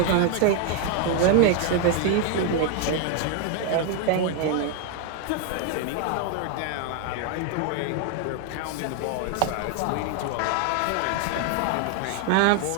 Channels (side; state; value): both; different; correlation 0.00